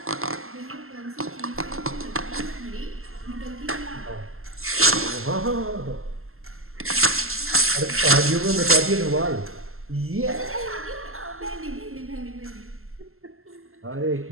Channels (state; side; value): late; left; 0.62 ms